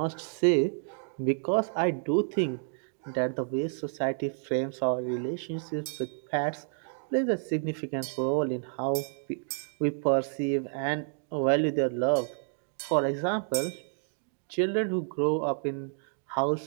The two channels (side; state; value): left; silent; digital silence